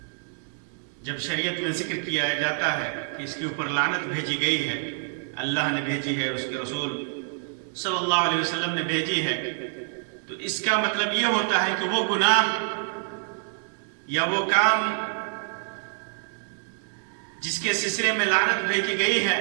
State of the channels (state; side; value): silent; left; 60 dB below the other